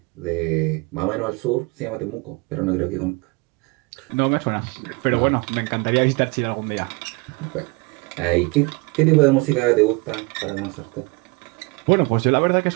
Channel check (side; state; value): left; quieter; 27.7 dB